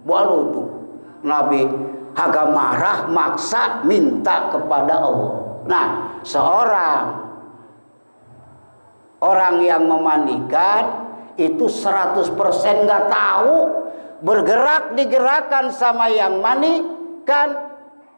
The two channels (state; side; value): inverted; both; correlation -1.00